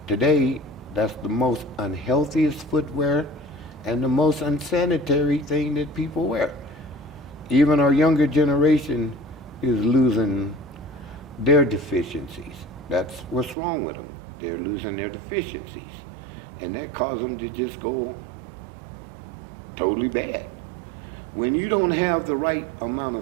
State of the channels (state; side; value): drops out; left; at 13.6 s